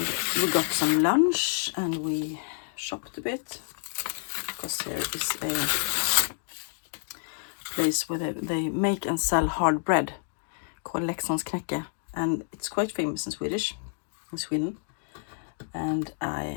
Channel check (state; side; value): silent; right; digital silence